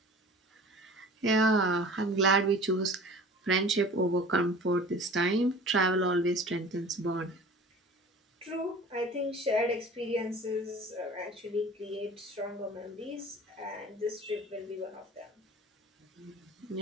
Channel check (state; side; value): normal; both; correlation 0.42